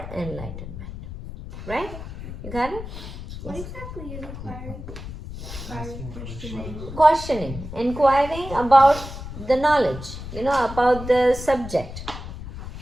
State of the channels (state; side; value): noise; left; rumble, 10 dB below the sound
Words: enlightenment. Right? You got it? What exactly is inquiring? Questioning, inquiring about the knowledge, about the subject.